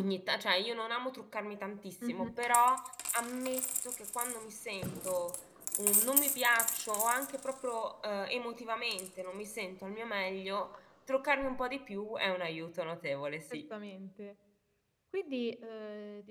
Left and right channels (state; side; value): identical; both; correlation 1.00